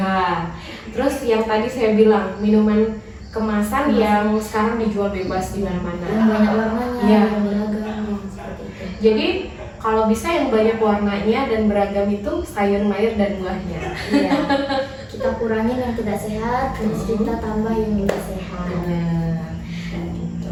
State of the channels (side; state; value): both; identical; correlation 1.00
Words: Terus yang tadi saya bilang, minuman kemasan yang sekarang dijual bebas di mana-mana. Yang banyak warnanya, Iya. yang beragam, seperti itu. Jadi kalau bisa yang banyak warnanya dan beragam itu sayur mayur dan buahnya. Iya. Kita kurangin yang tidak sehat, terus kita tambah yang lebih sehat. Benar.